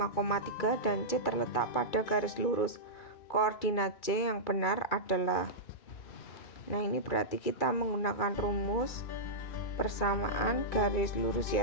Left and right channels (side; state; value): right; late; 2.3 ms